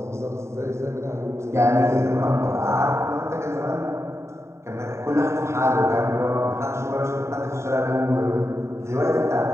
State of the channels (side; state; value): left; late; 0.13 ms